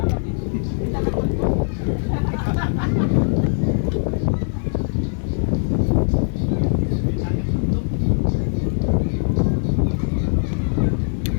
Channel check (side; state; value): right; silent; digital silence